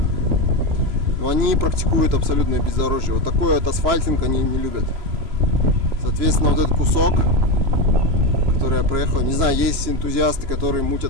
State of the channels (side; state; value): left; late; 3.0 ms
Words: Но они практикуют абсолютное бездорожье. Вот такой вот асфальтинг они не любят. Соответственно, вот этот кусок, который я проехал, не знаю, есть энтузиасты, которые